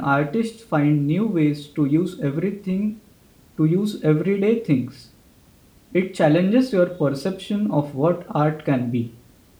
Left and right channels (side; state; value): both; identical; correlation 1.00